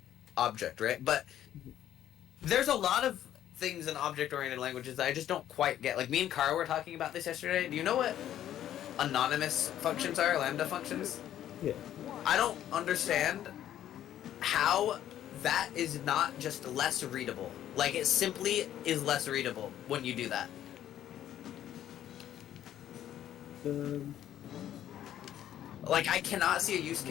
object, right? But there's a lot of things in object-oriented languages that I just don't quite get. Like, me and Kara were talking about this yesterday. Do you know what anonymous functions are, lambda functions? Yeah. I don't understand how that is not just less readable. Like, it simply is less readable when you do that. Like, I cannot see a use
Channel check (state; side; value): quieter; right; 11.5 dB